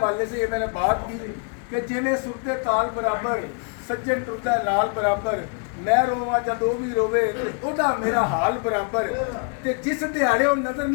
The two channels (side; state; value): right; quieter; 39.6 dB